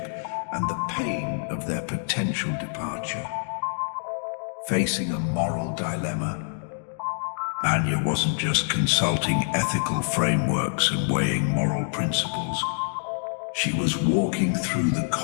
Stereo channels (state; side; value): silent; right; 61 dB below the other